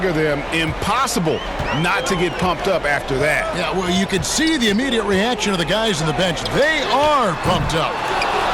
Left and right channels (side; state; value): both; identical; correlation 1.00